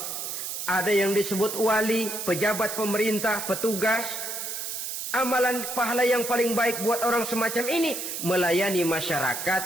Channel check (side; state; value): right; noise; hiss, 5 dB below the sound